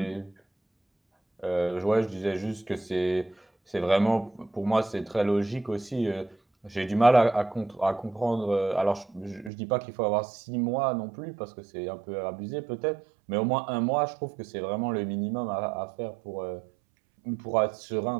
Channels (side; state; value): left; drops out; at 9.5 s